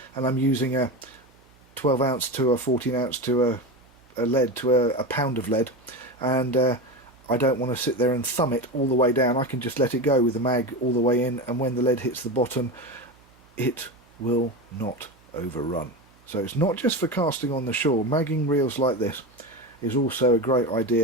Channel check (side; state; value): right; noise; hum, 30 dB below the sound